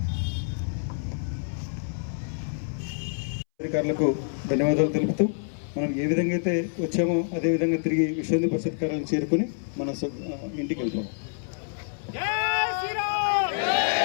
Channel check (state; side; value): silent; right; 60 dB below the other